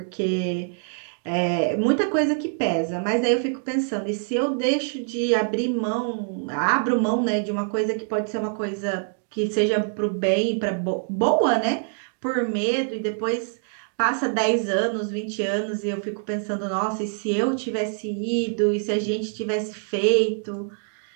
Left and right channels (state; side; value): silent; left; 62 dB below the other